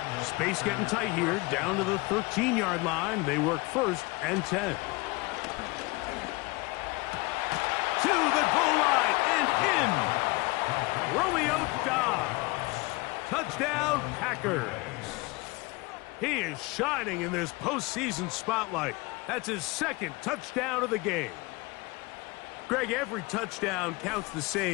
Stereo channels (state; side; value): quieter; right; 24.5 dB